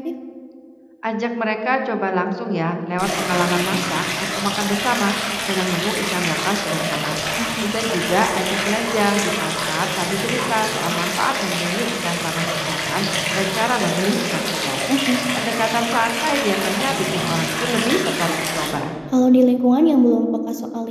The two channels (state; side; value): identical; both; correlation 1.00